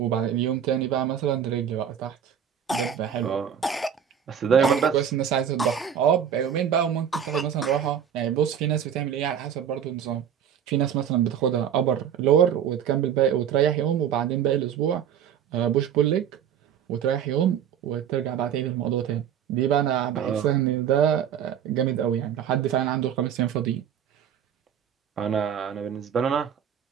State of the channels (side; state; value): left; quieter; 8.8 dB